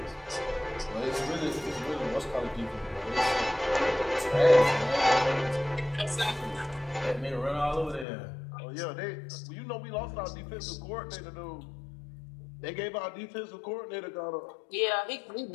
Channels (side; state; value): right; drops out; at 8.1 s